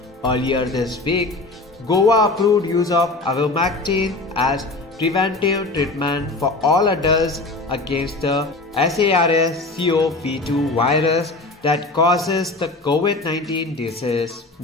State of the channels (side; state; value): right; quieter; 3.2 dB